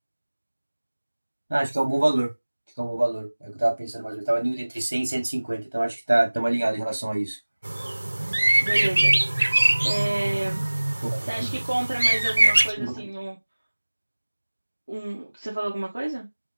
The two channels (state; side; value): inverted; both; correlation -1.00